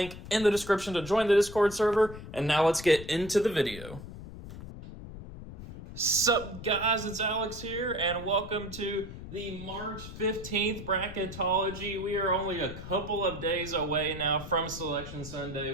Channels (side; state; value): left; noise; rumble, 12 dB below the sound